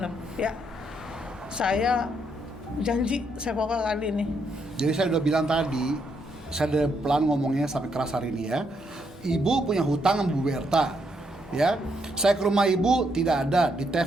ya. Saya janji saya pokoknya kali ini. Jadi saya udah bilang tadi, saya udah pelan ngomongnya sampai keras hari ini ya. Ibu punya hutang sama Bu Berta, ya. Saya ke rumah ibu tidak ada, di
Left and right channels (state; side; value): normal; both; correlation 0.76